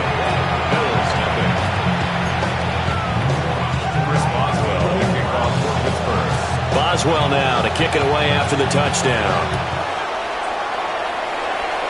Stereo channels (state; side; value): identical; both; correlation 1.00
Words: Boswell now to kick it away after the touchdown.